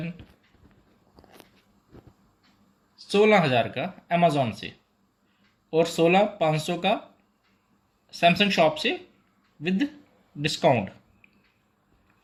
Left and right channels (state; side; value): identical; both; correlation 1.00